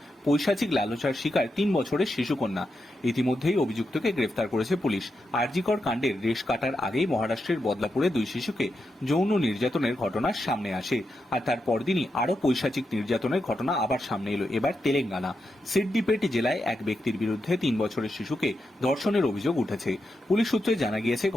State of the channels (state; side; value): normal; both; correlation 0.86